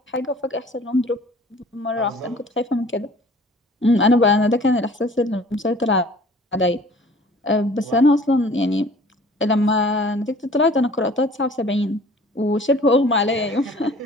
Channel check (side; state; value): both; normal; correlation 0.50